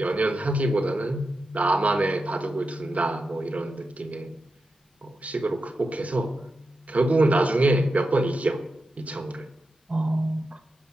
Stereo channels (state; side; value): normal; both; correlation 0.89